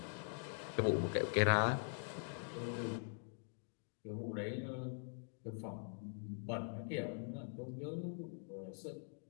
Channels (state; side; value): silent; right; digital silence